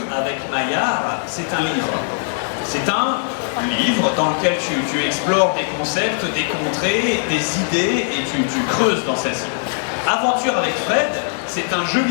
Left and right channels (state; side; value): silent; right; 66 dB below the other